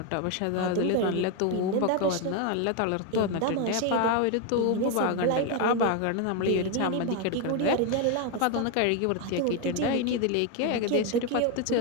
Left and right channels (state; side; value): different; both; correlation 0.02